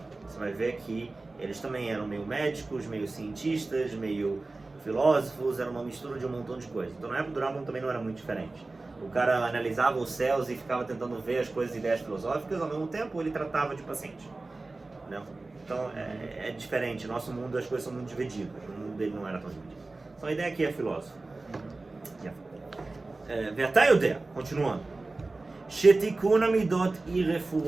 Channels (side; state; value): left; quieter; 3.3 dB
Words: você vai ver que eles também eram meio médicos, meio cientistas, meio filósofos, era uma mistura de um montão de coisas. Então na época do Rambam também não era muito diferente. O cara analisava os céus e ficava tentando ver as coisas e ideias filosóficas, ao mesmo tempo ele tratava de paciente. Né? Então é diferente, no nosso mundo as coisas são muito divididas, o mundo dele não era tão dividido. Então a ideia aqui é filósofo. ואתה יודע, continuando, שתיקון המידות היא